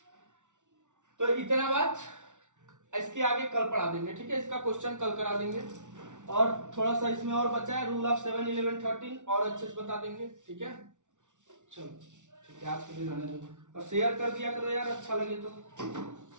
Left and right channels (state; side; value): late; left; 0.86 ms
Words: तो इतना बात, इसके आगे कल पढ़ा देंगे। ठीक है, इसका क्वेश्चन कल करा देंगे और थोड़ा सा इसमें और बचा है, रूल ऑफ 7 11 13 और अच्छे से बता देंगे। ठीक है, चलो ठीक है, आज के लिए रहने दो और शेयर कर दिया करो यार, अच्छा लगे तो।